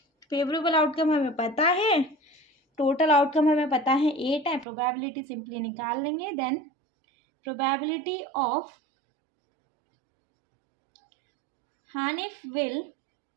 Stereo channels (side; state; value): left; drops out; at 4.7 s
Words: फेवरेबल आउटकम हमें पता है, टोटल आउटकम हमें पता है 8 है, प्रोबेबिलिटी सिंपली निकाल लेंगे। Then probability of Hanif will